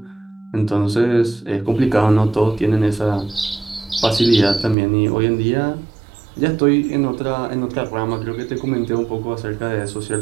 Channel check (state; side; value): drops out; left; at 4.8 s